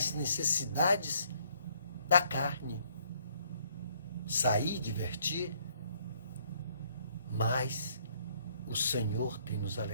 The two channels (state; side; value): inverted; both; correlation -0.66